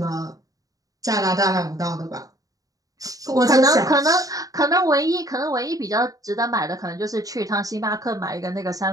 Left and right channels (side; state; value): left; late; 0.17 ms